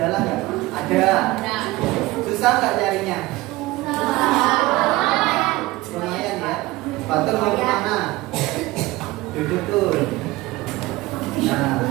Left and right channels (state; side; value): quieter; left; 19.4 dB